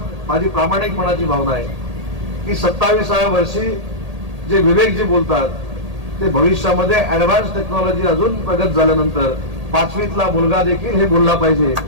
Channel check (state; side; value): late; left; 1.8 ms